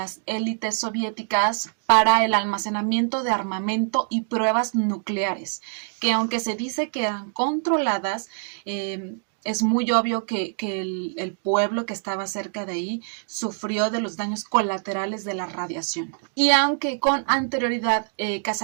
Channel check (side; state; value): left; silent; 57 dB below the other